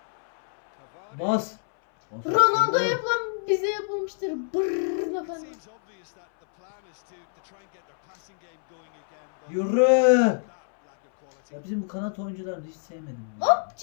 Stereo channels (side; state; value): right; silent; 61 dB below the other